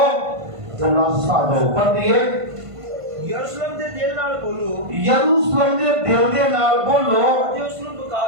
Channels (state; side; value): late; left; 1.5 ms